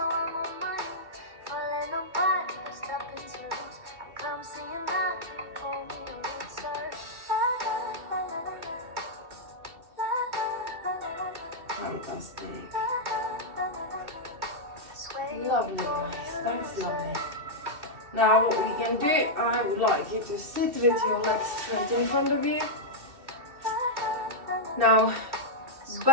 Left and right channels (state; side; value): late; left; 2.7 ms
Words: Fantastic. Lovely guys, that's lovely. Now what we can do, I would like you to sit with your legs straight in front of you. Now